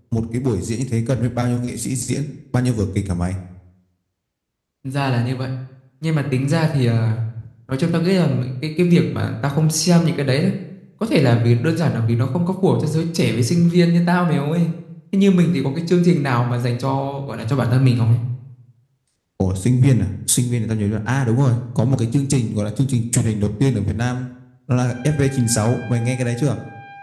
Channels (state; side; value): identical; both; correlation 1.00